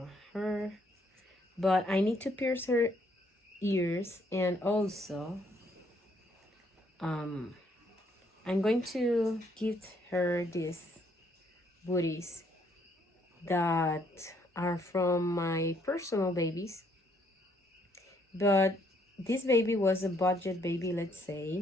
her. But I need to pierce her ears, and also I'm going to gift her these booties that are from my personal babies. But this baby was a budget baby, let's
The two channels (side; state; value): both; normal; correlation 0.69